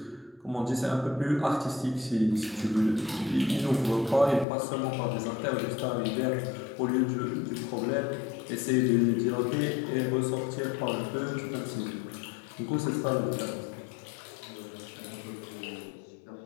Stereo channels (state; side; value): drops out; right; at 4.5 s